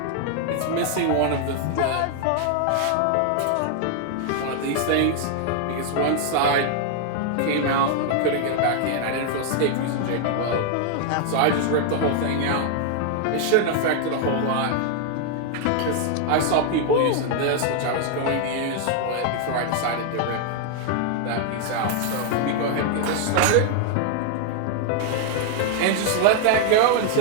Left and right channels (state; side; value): different; both; correlation 0.00